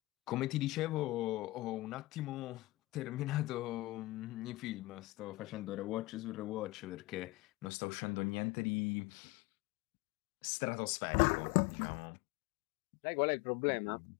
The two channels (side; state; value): right; drops out; at 7.7 s